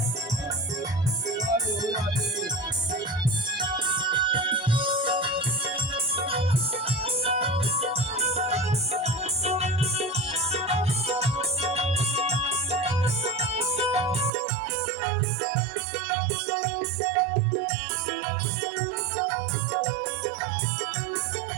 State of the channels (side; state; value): left; drops out; at 14.3 s